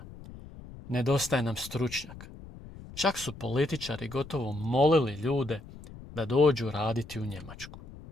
Nedostaje nam stručnjaka. Čak su političari gotovo molili ljude da dođu raditi u Njemačku.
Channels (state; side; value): noise; left; rumble, 16 dB below the sound